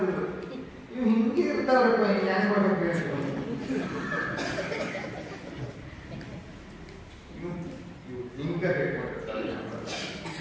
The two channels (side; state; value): both; identical; correlation 1.00